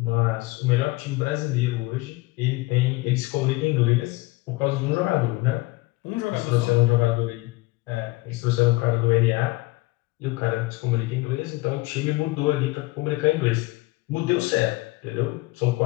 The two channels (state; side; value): quieter; right; 21.1 dB